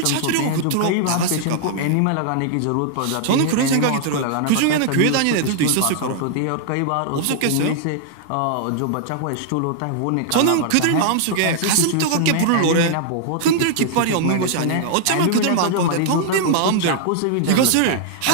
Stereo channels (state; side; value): different; both; correlation -0.01